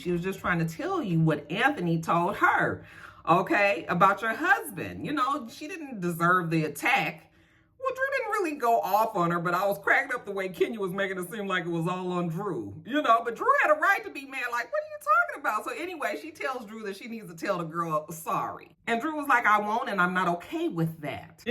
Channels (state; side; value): identical; both; correlation 1.00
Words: was just trying to tell you what Anthony told her. Okay, about your husband. You know, she didn't deserve the attack. Well, Drew didn't really go off on her, but I was cracked up the way Kenya was making it seem like it was all on Drew. You know, but Drew had a right to be mad. Like, what are you talking about? So anyway, she tells Drew that she needs to tell the girl sorry. And Drew was like, I won't, and I'm not okay with that.